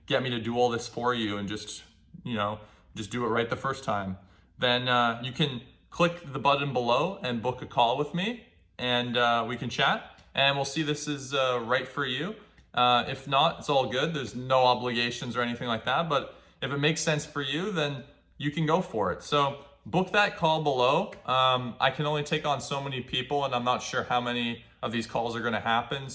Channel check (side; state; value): both; identical; correlation 1.00